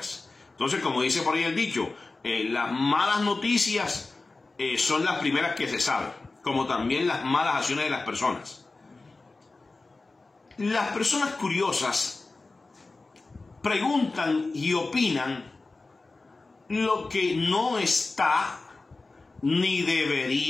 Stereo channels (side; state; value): right; quieter; 3.5 dB